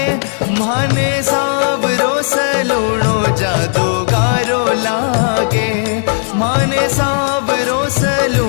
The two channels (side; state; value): right; silent; digital silence